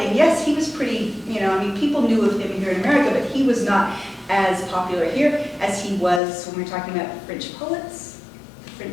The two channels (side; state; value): right; drops out; at 6.2 s